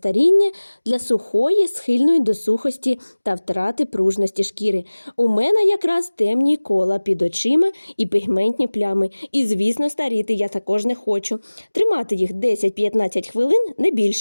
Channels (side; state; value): both; inverted; correlation -1.00